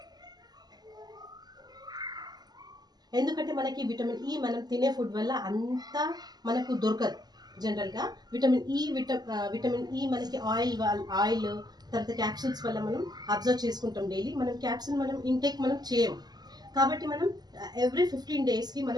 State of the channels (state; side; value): late; left; 0.20 ms